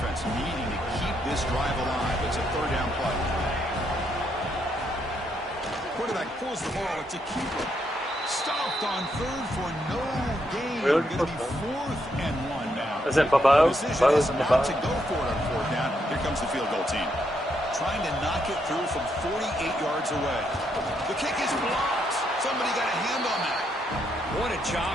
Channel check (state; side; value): normal; both; correlation 0.77